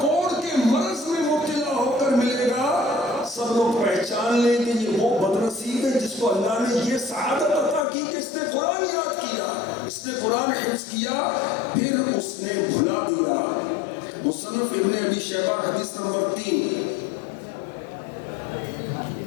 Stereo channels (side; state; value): right; drops out; at 7.9 s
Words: کوڑ کے مرض میں مبتلا ہو کر ملے گا. سب لوگ پہچان لیں کہ یہ وہ بدنصیب ہے جس کو اللہ نے یہ سعادت عطا کی کہ اس نے قرآن یاد کیا، اس نے قرآن حفظ کیا، پھر اس نے بھلا دیا. مصنف ابن ابی شیبہ حدیث نمبر 3،